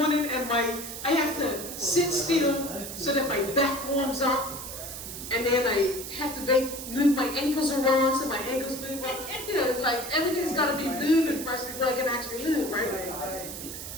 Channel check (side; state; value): right; noise; hiss, 9 dB below the sound